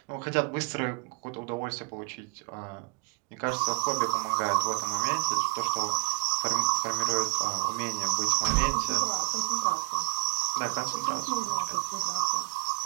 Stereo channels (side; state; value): left; quieter; 33.8 dB